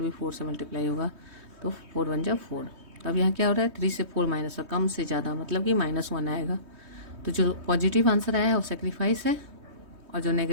4 से मल्टीप्लाई होगा तो 4 1 जा 4। तो अब यहाँ क्या हो रहा है 3 से 4 माइनस, और कम से ज़्यादा मतलब कि -1 आएगा। तो जो पॉजिटिव आंसर आया है वो सेक्रीफाइस है और जो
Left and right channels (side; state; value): left; late; 3.2 ms